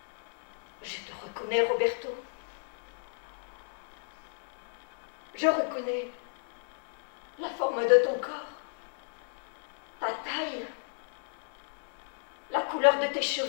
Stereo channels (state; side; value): silent; right; digital silence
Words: je te reconnais, Roberto. Je reconnais la forme de ton corps, ta taille, la couleur de tes